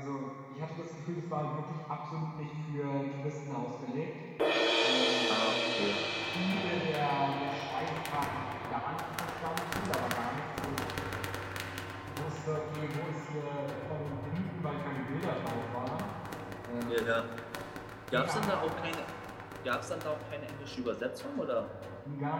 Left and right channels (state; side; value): identical; both; correlation 1.00